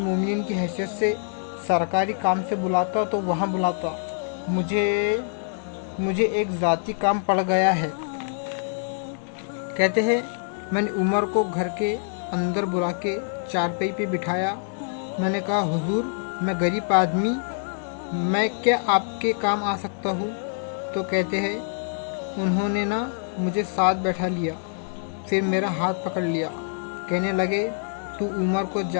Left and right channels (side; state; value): right; silent; digital silence